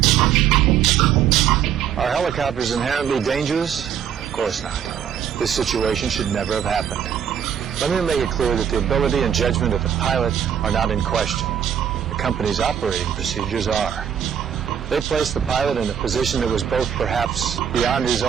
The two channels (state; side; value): quieter; left; 8.8 dB